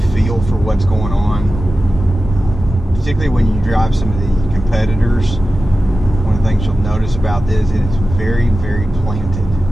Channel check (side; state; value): both; normal; correlation 0.94